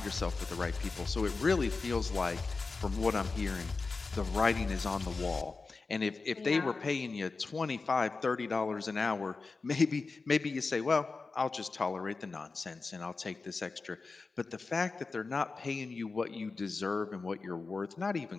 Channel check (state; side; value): quieter; right; 4.1 dB